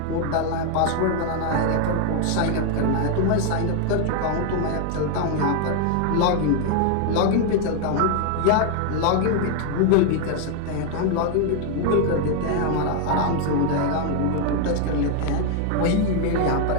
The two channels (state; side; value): different; both; correlation 0.00